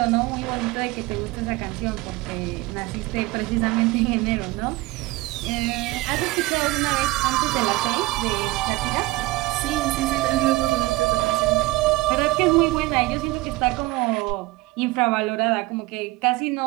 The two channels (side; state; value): left; quieter; 20.2 dB